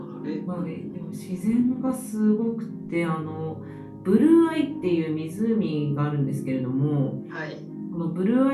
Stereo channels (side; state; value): both; identical; correlation 1.00